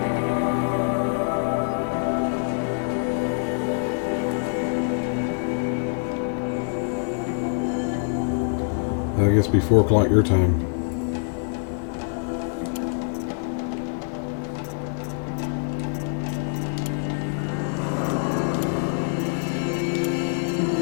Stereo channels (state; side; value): silent; right; digital silence